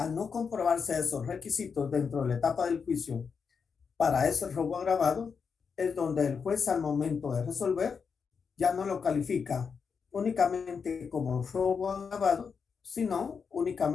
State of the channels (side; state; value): right; quieter; 5.9 dB